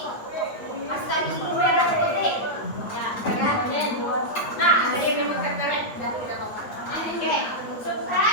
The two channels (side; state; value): right; late; 9.1 ms